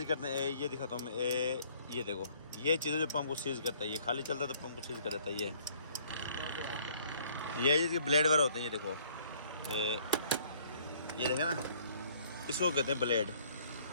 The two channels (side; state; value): both; inverted; correlation -0.60